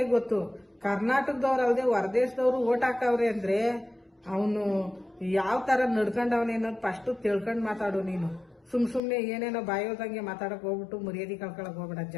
ಗೊತ್ತು. ಕರ್ನಾಟಕದವ್ರು ಅಲ್ಲದೆ ಹೊರದೇಶದವ್ರು ಓಟ್ ಹಾಕವ್ರೆ ಅಂದ್ರೆ ಅವನು ಯಾವ ತರ ನಡ್ಕೊಂಡವನೇ ಅನ್ನೋದು ಫಸ್ಟ್ ತಿಳ್ಕೊಂಡ್ ಮಾತಾಡು ನೀನು. ಸುಮ್ನೆ ಏನೇನೋ ಬಾಯೋದಂಗೆ ಮಾತಾಡಕ್ ಹೋಗ್ಬಿಟ್ಟು ಮರ್ಯಾದೆ ಕಳ್ಕೊಳಕ್ ಹೋಗ್ಬೇಡ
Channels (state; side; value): drops out; right; at 9.0 s